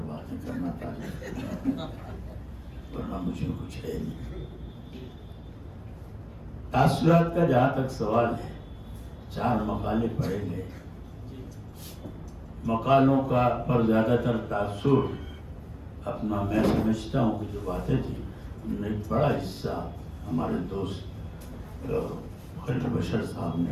باتیں کرنا پڑتا، ورنہ مجھے کچھ ہے نہیں۔ تاثرات کا جہاں تک سوال ہے، 4 مقالے پڑھے گئے، مقالوں کا پر زیادہ تر تاثر اپنا میں سمجھتا ہوں کہ جو باتیں تھیں ان میں ایک بڑا حصہ ہمارے دوست خلیل بشر صاحب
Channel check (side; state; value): both; identical; correlation 1.00